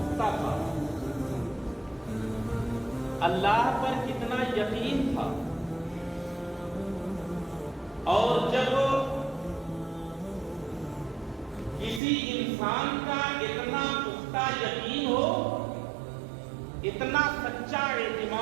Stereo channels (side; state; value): left; drops out; at 12.0 s